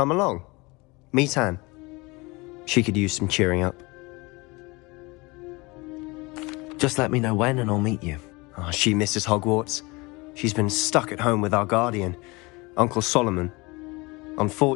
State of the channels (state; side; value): quieter; right; 24.9 dB